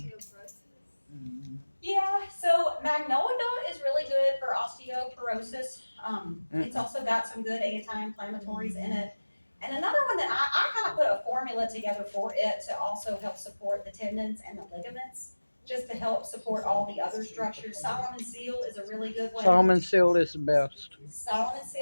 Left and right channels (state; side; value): inverted; both; correlation -1.00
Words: Mhm. Yeah, so magnolia is really good for osteoporosis. It's also got some good anti-inflammatories in it. And another one that I kind of put a formula together for it to also help support the tendons and the ligaments, just to help support all the other structures. Solomon seal is a really good one. Salmon seal is the best. Solomon